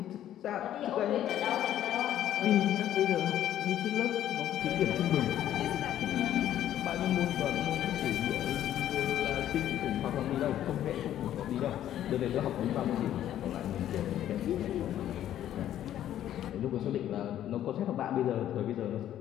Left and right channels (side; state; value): right; quieter; 11.7 dB